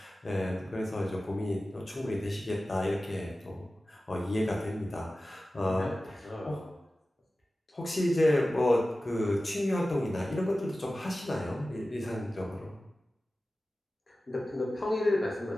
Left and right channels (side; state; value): both; normal; correlation 0.95